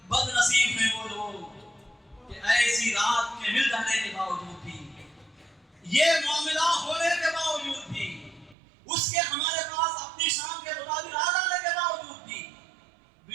بد نصیب ہیں وہ لوگ کہ ایسی رات کے مل جانے کے باوجود بھی، یہ معاملہ ہونے کے باوجود بھی، اس کے ہمارے پاس اپنی شام کے مطابق آ جانے کے باوجود بھی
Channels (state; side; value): drops out; left; at 8.6 s